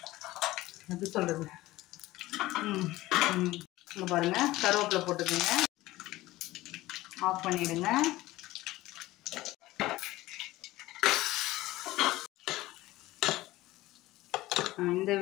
எப்படி சொல்கிறது, இங்கே பாருங்கள், கருவேப்பிலை போட்டுக்கோங்க. ஆஃப் பண்ணிவிடுங்க. இந்த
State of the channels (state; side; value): quieter; right; 17.6 dB